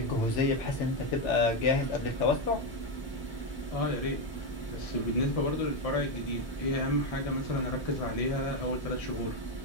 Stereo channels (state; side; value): normal; both; correlation 0.07